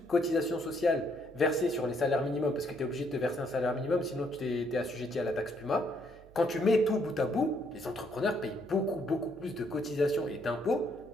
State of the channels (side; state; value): right; noise; hum, 23 dB below the sound